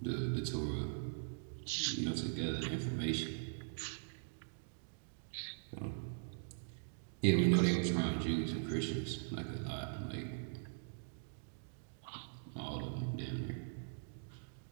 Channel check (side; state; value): left; silent; digital silence